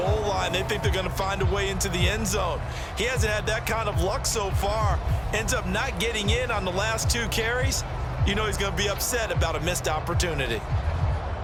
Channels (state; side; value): identical; both; correlation 1.00